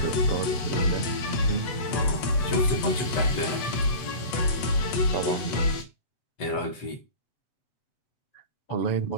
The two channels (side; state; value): right; late; 7.9 ms